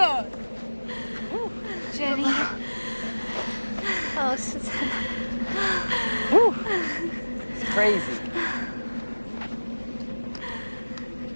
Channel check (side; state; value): both; inverted; correlation -1.00